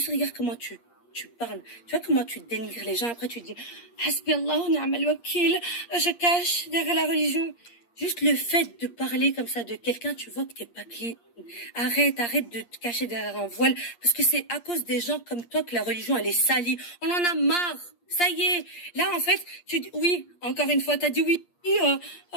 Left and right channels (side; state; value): right; late; 8.5 ms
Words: regarde comment tu parles. Tu vois comment tu dénigres les gens. Après tu dis, Hasbi Allah, ni'mal wakil. Je cache derrière la religion. Juste le fait de parler comme ça de quelqu'un, tu vois que t'es pas clean. Arrête de te cacher derrière un voile. Parce que c'est à cause des gens comme toi que la religion, elle est salie. On en a marre. Ça y est. Là, en fait, tu dis, oui, encore une fois, t'as dit oui.